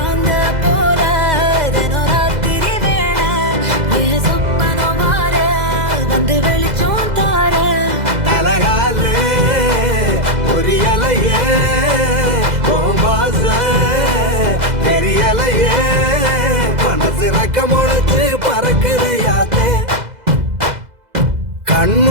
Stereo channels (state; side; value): late; left; 2.0 ms